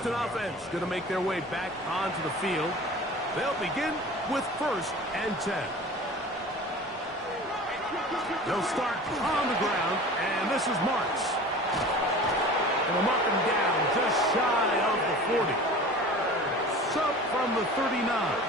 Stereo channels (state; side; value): normal; both; correlation 0.40